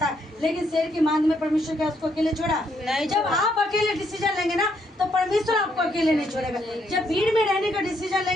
है, लेकिन शेर की मांद में परमेश्वर क्या उसको अकेले छोड़ा? जब आप अकेले डिसीजन लेंगे ना तो परमेश्वर आपको अकेले नहीं छोड़ेगा। जब भीड़ में रहने का डिसीजन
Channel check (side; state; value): both; normal; correlation 0.74